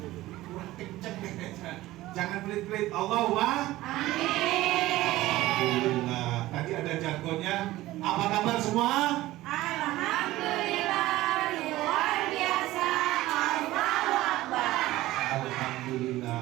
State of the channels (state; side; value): quieter; left; 16.8 dB